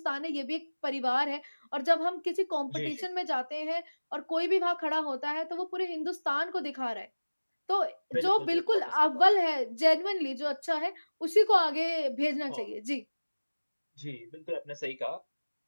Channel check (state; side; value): inverted; both; correlation -1.00